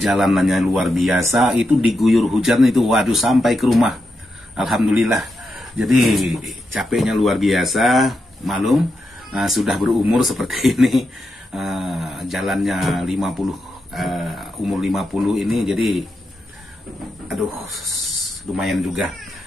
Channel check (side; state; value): both; normal; correlation 0.86